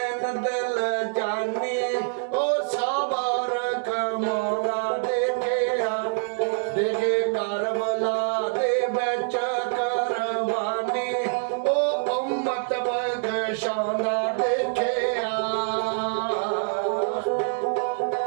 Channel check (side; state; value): left; silent; digital silence